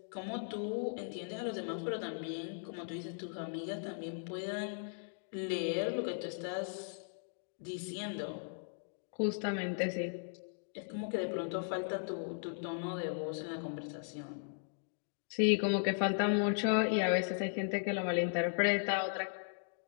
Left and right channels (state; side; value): silent; right; digital silence